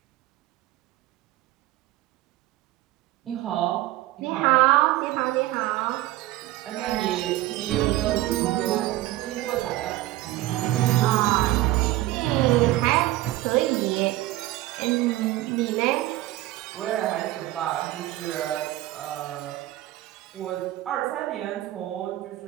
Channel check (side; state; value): left; quieter; 16.2 dB